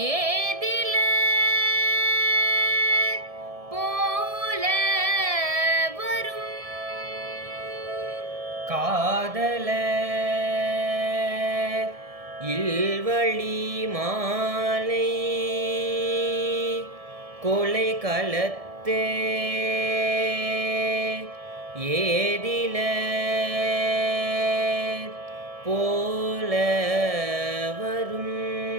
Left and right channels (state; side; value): late; left; 1.7 ms